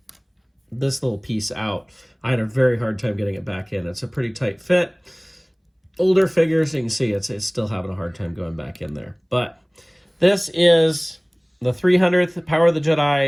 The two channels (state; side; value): identical; both; correlation 1.00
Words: this little piece out, I had a very hard time getting it back in. It's a pretty tight fit. Older figures, you can see it's still having a hard time going back in there. But this is the 300th Power of the